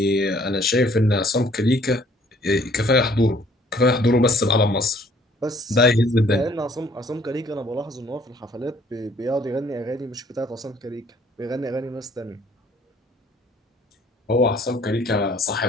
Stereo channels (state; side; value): normal; both; correlation 0.60